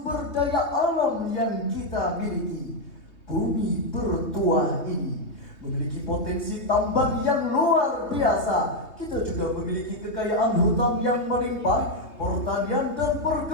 daya alam yang kita miliki. Bumi bertuah ini memiliki potensi tambang yang luar biasa. Kita juga memiliki kekayaan hutan yang melimpah. Pertanian dan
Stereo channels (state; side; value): late; right; 3.2 ms